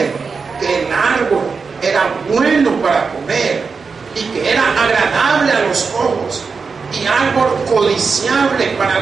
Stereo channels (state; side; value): quieter; left; 5.0 dB